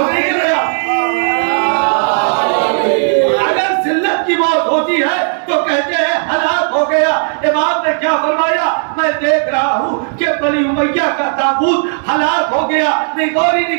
اگر ذلت کی موت ہوتی ہے تو کہتے ہیں ہلاک ہو گیا۔ امام نے کیا فرمایا؟ میں دیکھ رہا ہوں کہ بنی امیہ کا تابوت ہلاک ہو گیا۔ نہیں غور ہی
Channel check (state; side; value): silent; left; digital silence